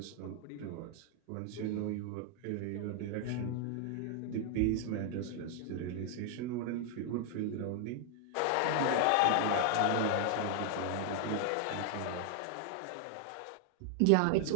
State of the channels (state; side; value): different; both; correlation 0.00